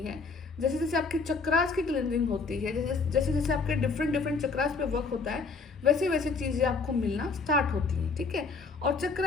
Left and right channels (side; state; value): right; quieter; 4.5 dB